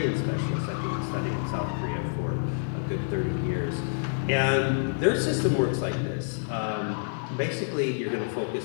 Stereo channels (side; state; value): right; silent; digital silence